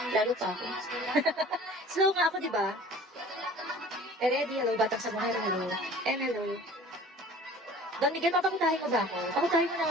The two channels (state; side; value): normal; both; correlation 0.46